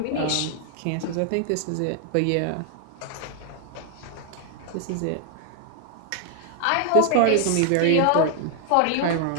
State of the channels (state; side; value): different; both; correlation 0.00